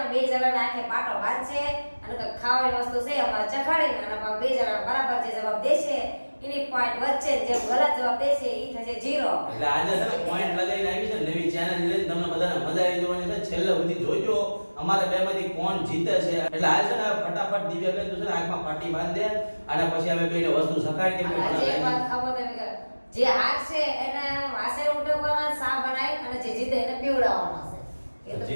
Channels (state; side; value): inverted; both; correlation -1.00